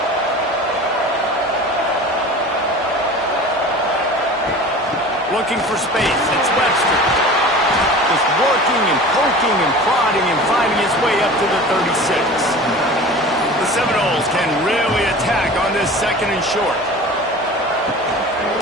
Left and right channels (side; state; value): both; normal; correlation 0.38